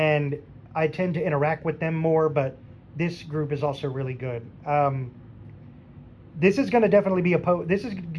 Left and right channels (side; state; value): both; identical; correlation 1.00